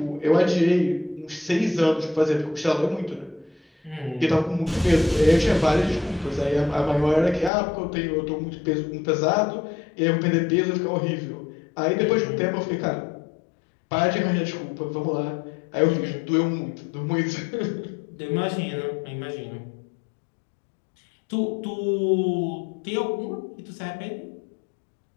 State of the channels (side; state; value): right; drops out; at 7.5 s